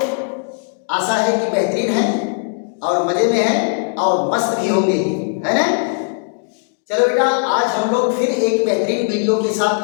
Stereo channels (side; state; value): right; silent; digital silence